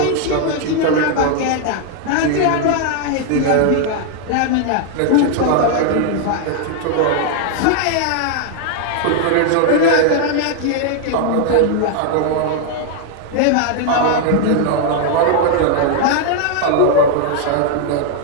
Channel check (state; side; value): different; both; correlation 0.00